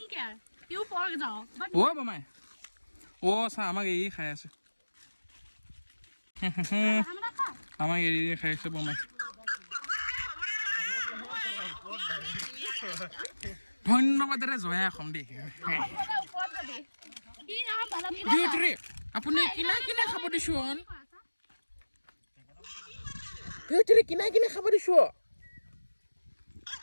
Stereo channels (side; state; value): both; inverted; correlation -1.00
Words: অ বমাই অ চা আমাক এৰি খাই আছে আমাক এৰি খাই আছে বমাই ধন্যবাদেৰে জয়া অসম দেই আপুনি কিনাই কিনাই খাব দিছোন কিনাই কিনাই খাব দিছো